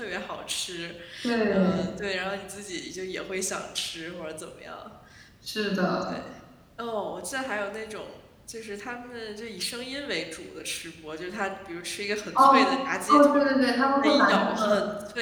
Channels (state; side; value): identical; both; correlation 1.00